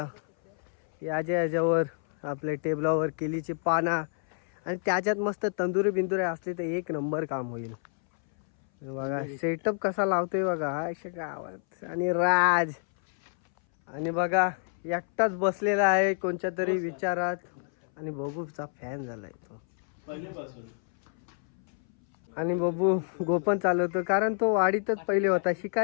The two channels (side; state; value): right; silent; 59 dB below the other